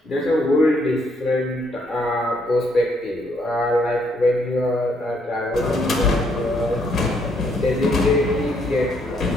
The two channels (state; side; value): normal; both; correlation 0.71